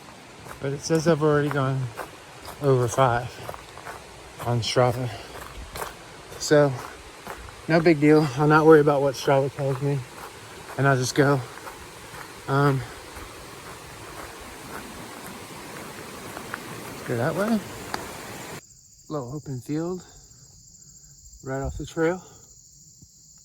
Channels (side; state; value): both; identical; correlation 1.00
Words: but it says I've already gone over 5 on Strava. So, no big deal. I'll not worry about what Strava tells me, and I'll just go. Let's go that way. Little open field right off the trail.